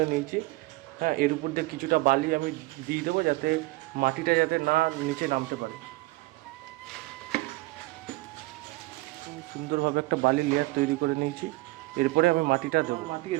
নিয়েছি। হ্যাঁ, এর উপর দিয়ে কিছুটা বালি আমি দিয়ে দেবো যাতে মাটিটা যাতে না নিচে নামতে পারে। সুন্দরভাবে একটা বালি লেয়ার তৈরি করে নিয়েছি। এরপরে আমি মাটিটা দেবো। মাটি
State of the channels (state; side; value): quieter; left; 21.3 dB